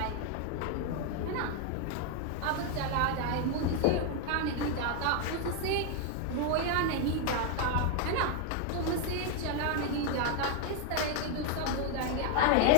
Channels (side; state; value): both; different; correlation 0.01